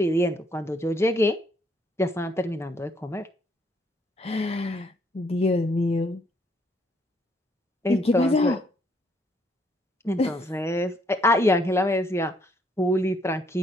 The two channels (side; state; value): both; normal; correlation 0.69